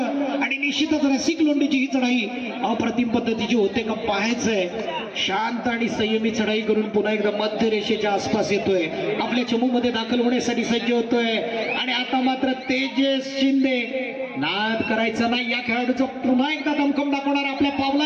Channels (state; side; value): identical; both; correlation 1.00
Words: आणि निश्चितच रसिक लोंढेची ही चढाई अप्रतिम पद्धतीची होते का पाहायचंय. शांत आणि संयमी चढाई करून पुन्हा एकदा मध्य रेषेच्या आसपास येतोय. आपल्या चमूमध्ये दाखल होण्यासाठी सज्ज होतोय आणि आता मात्र तेजस शिंदे. नाद करायचा नाही या खेळाडूचं पुन्हा एकदा दमखम दाखवणार आपल्या